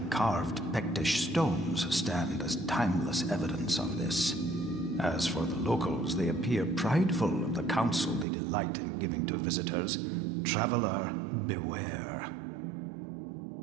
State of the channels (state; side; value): drops out; left; at 8.2 s